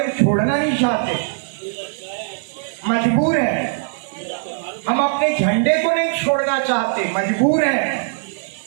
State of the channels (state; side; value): silent; left; digital silence